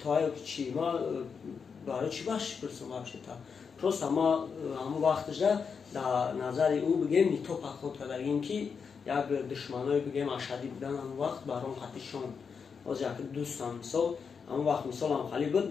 чи ма барои чи бахш пурсам вообще та просто ма ҳамон вақтша дар назари ӯ бигем нито пахот кардагим ки як душманои бигем ашадӣ будан ҳамон вақт баром қатишон оз як дӯстам мисол ҳамон вақт мисолам хали буд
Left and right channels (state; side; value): quieter; right; 6.0 dB